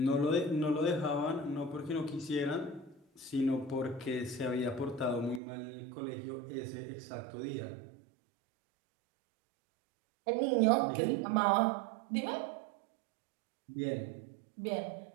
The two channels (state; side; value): drops out; left; at 5.4 s